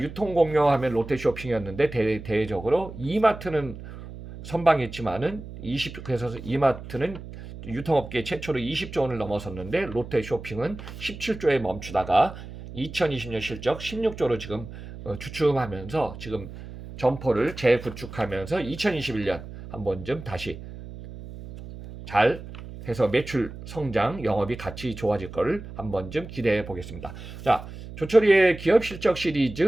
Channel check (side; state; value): right; noise; hum, 13 dB below the sound